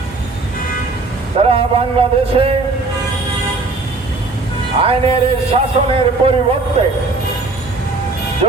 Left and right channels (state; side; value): quieter; left; 3.5 dB